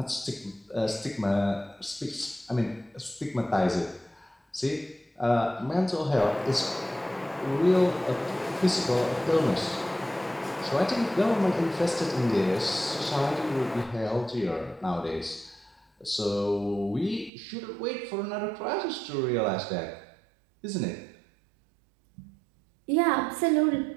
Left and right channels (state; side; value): drops out; left; at 17.3 s